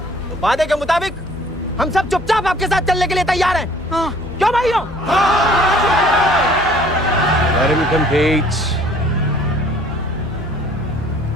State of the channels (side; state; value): left; noise; hum, 15 dB below the sound